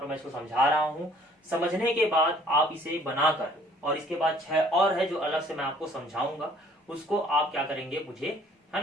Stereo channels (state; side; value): normal; both; correlation 0.57